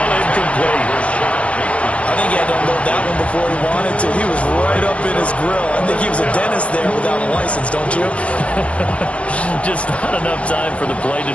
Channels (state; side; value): late; right; 0.062 ms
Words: incomplete. I think he had to unload that one before he wanted to. He was right up in his grill. I think he was a dentist there without a license, don't you? Just not enough time for the play to